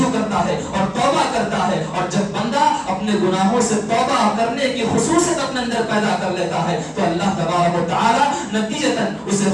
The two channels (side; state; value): both; identical; correlation 1.00